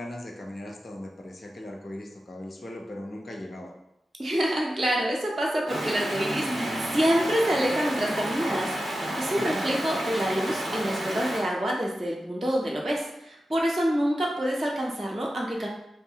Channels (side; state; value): both; normal; correlation 0.92